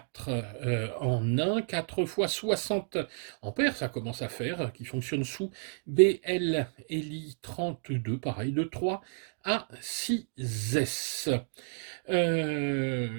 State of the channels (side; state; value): left; silent; 57 dB below the other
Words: en 1, 4 x 60 ampères, ça commence à faire, qui fonctionne sous BL Eli 32, pareil, de 3 A6S.